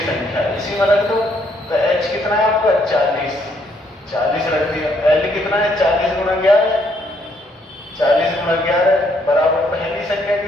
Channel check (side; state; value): both; normal; correlation 0.70